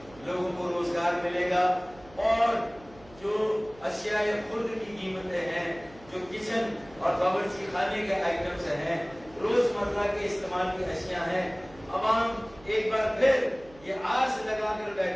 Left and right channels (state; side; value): noise; right; hum, 23 dB below the sound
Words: لوگوں کو روزگار ملے گا, اور جو اشیاء خرد کی قیمتیں ہیں, جو کچن اور باورچی خانے کے آئٹمز ہیں, روزمرہ کے استعمال کی اشیاء ہیں, عوام ایک بار پھر یہ آس لگا کر